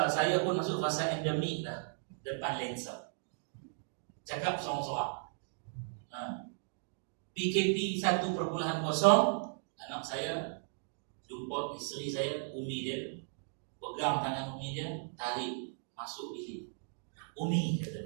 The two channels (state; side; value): silent; left; digital silence